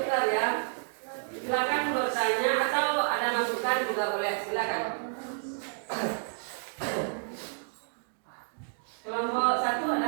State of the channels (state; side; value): silent; left; digital silence